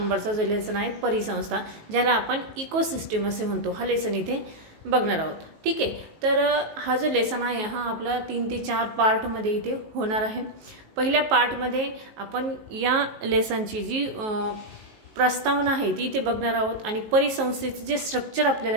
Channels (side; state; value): left; late; 19 ms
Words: जो लेसन आहे परिसंस्था, ज्याला आपण इकोसिस्टम असे म्हणतो, हा लेसन इथे बघणार आहोत। ठीक आहे, तर हा जो लेसन आहे हा आपला 3 ते 4 पार्ट मध्ये इथे होणार आहे। पहिल्या पार्ट मध्ये आपण या लेसनची जी प्रस्तावना आहे ती इथे बघणार आहोत आणि परिसंस्थेचे जे स्ट्रक्चर